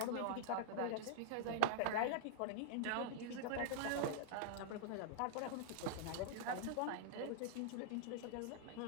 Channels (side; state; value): both; different; correlation -0.01